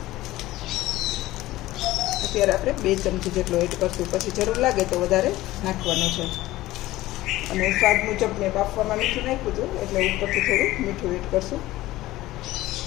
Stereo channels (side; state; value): right; quieter; 16.9 dB